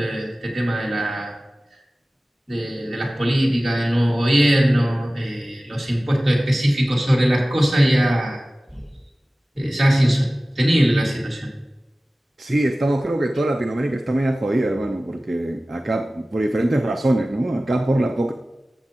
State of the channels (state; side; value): normal; both; correlation 0.97